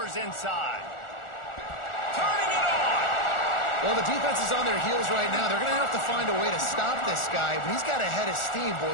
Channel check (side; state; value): right; late; 1.4 ms